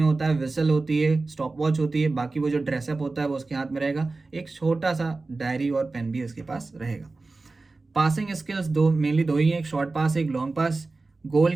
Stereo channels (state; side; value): quieter; left; 3.6 dB